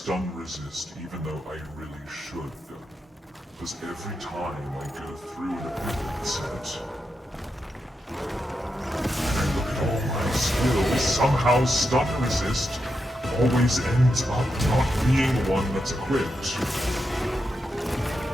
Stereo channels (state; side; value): normal; both; correlation 0.86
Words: resist, even though I really should. Because every time I go through an ability set, and I look at all my skills, somehow stun resist always ends up not being one that's equipped.